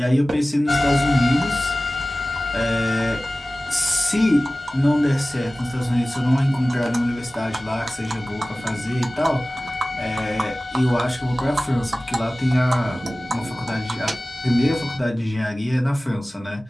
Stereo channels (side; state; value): both; normal; correlation 0.97